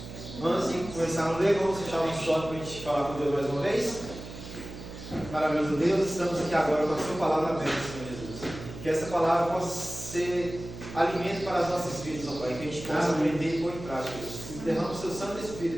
Antes de começar a ler, vamos fechar o short para a gente falar com Deus mais uma vez. Maravilhoso Deus, estamos aqui agora com a sua palavra aberta, Senhor Jesus. Que essa palavra possa ser alimento para as nossas vidas, ó Pai, que a gente possa aprender e pôr em prática, Deus. Derrama o seu Santo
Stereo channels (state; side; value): noise; right; hum, 12 dB below the sound